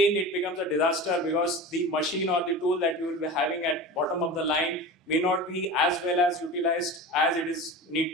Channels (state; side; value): normal; both; correlation 0.32